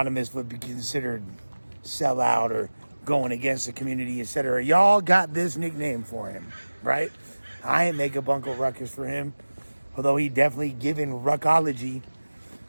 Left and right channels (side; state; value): both; inverted; correlation -1.00